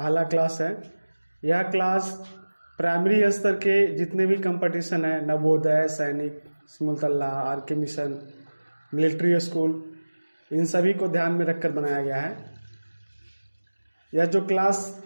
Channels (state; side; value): inverted; both; correlation -1.00